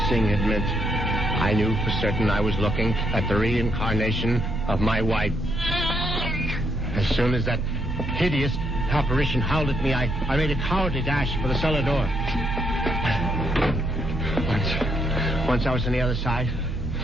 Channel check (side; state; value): both; normal; correlation 0.75